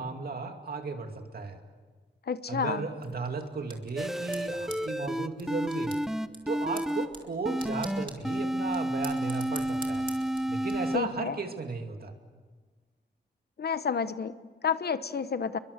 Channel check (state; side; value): normal; both; correlation 0.52